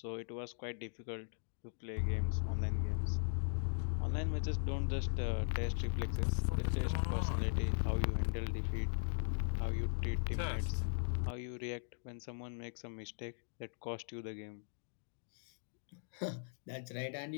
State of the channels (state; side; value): silent; right; digital silence